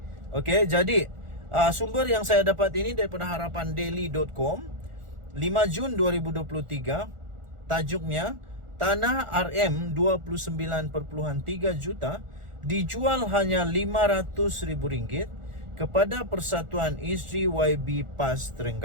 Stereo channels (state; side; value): late; left; 1.4 ms